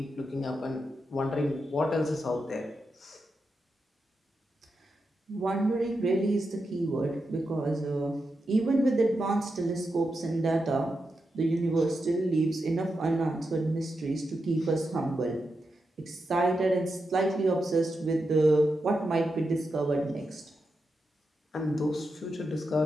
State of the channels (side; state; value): both; normal; correlation 0.87